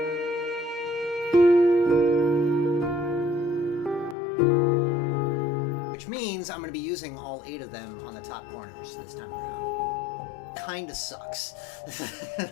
Which means I'm going to be using all 8 of them on the top corners this time around. Kinda sucks.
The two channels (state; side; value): drops out; right; at 4.2 s